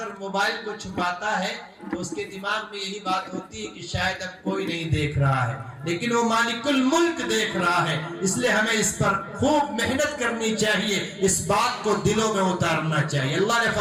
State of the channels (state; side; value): identical; both; correlation 1.00